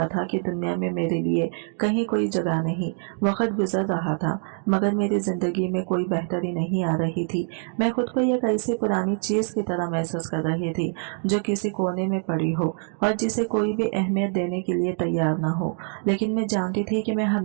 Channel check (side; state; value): left; silent; 62 dB below the other